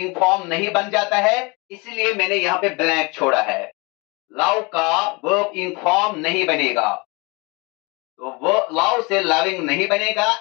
फॉर्म नहीं बन जाता है, इसलिए मैंने यहां पे ब्लैंक छोड़ा है। लव का वर्ब इन फॉर्म नहीं बनेगा, तो वो लव से लविंग नहीं बनेगा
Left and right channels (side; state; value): right; quieter; 27.9 dB